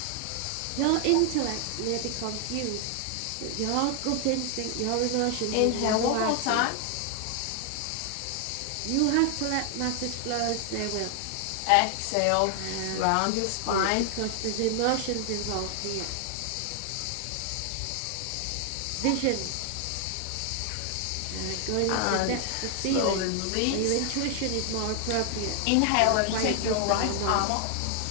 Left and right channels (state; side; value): different; both; correlation 0.00